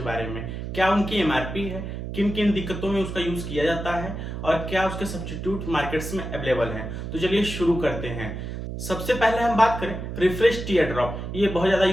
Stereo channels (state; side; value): noise; right; hum, 6 dB below the sound